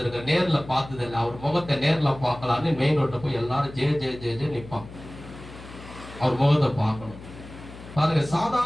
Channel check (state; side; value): noise; left; hum, 16 dB below the sound